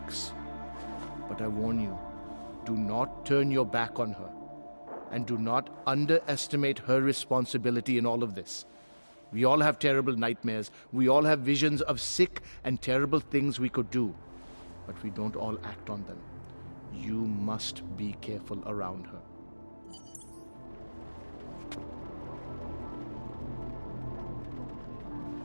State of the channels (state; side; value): inverted; both; correlation -1.00